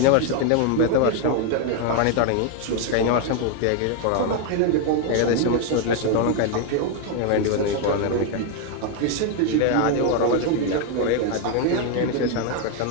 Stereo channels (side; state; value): both; different; correlation 0.01